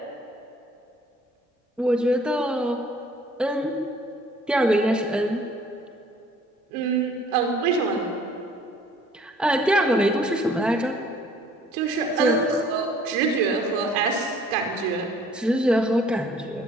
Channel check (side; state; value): both; normal; correlation 0.56